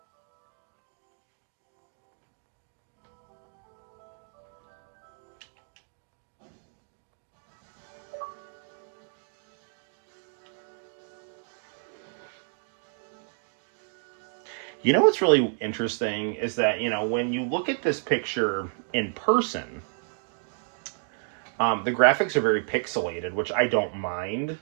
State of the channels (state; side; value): silent; left; 58 dB below the other